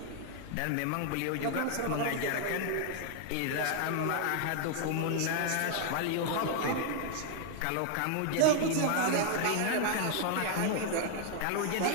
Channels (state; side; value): different; both; correlation 0.00